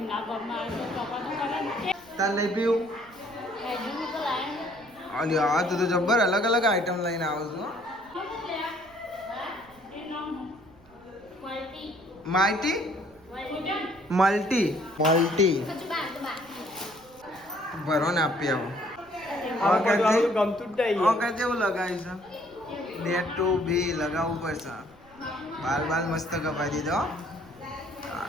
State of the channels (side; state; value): right; noise; rumble, 27 dB below the sound